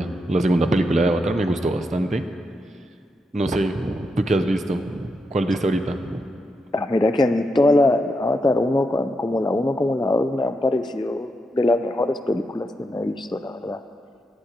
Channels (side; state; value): both; normal; correlation 0.84